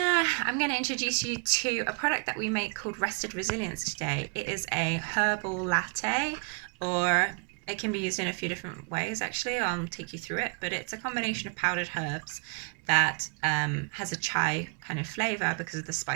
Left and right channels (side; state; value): left; quieter; 37.9 dB